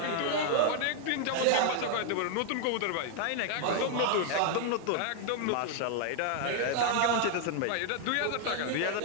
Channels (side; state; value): both; different; correlation 0.00